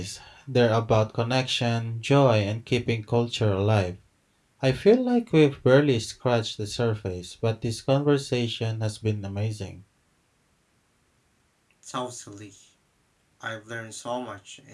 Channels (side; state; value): both; identical; correlation 1.00